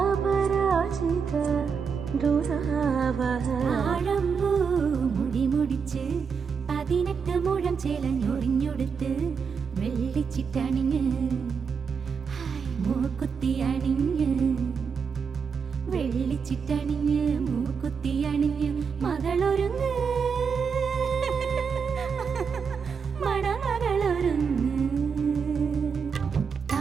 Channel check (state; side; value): quieter; left; 6.0 dB